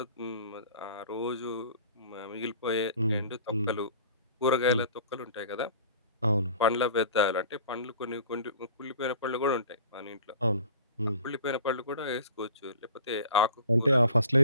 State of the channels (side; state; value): both; inverted; correlation -0.44